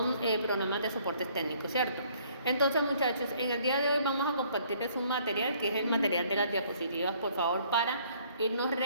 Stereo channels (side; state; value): both; inverted; correlation -0.61